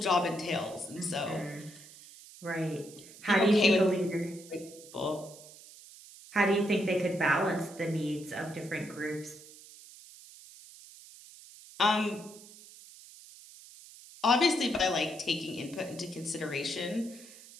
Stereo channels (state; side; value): noise; right; hiss, 19 dB below the sound